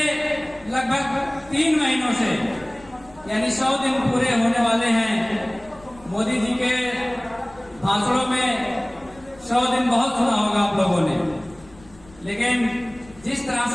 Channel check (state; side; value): noise; left; rumble, 25 dB below the sound